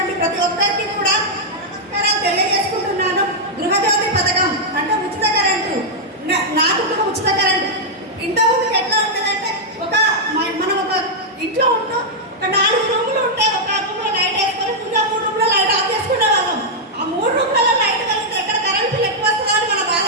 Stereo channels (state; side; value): normal; both; correlation -0.04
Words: ప్రతి ఒక్కరికి కూడా నమస్కారాలు తెలియజేసుకుంటున్నాను. గృహజ్యోతి పథకం అంటే ఉచిత కరెంటు. నాకు కూడా ఉచిత కరెంటు. ఇంతకుముందుకు ఎట్లా ఉంటుందంటే మనం ఒక ఇంట్లో ఉంటాం, ఒక 4 రూములు ఉంటాయి. ఒక రూమ్లో లైట్ వేసుకొని ఇంకా 3 రూమ్లో లైట్ ఆఫ్ చేసుకునే వాళ్ళం. ఆ 3 రూమ్లలో లైట్ కలిగితే ఎక్కడ కరెంట్ బిల్ ఎక్కువ వస్తుందో అని మన బాధ.